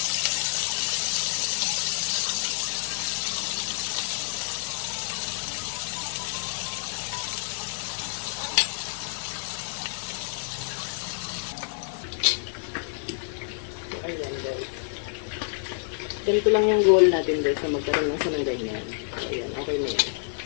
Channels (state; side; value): silent; right; digital silence